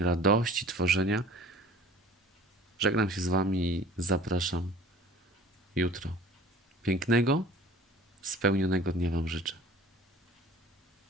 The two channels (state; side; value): normal; both; correlation 0.46